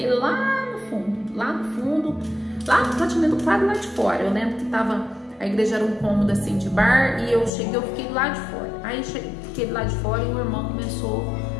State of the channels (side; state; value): right; drops out; at 7.5 s